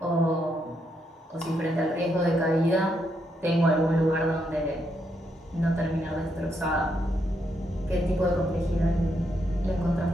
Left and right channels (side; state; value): both; normal; correlation 0.79